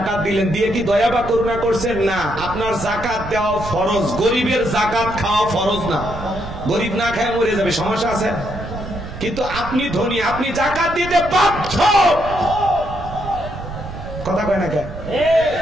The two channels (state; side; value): noise; right; rumble, 11 dB below the sound